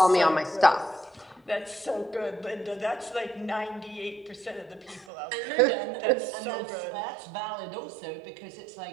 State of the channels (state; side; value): drops out; left; at 5.1 s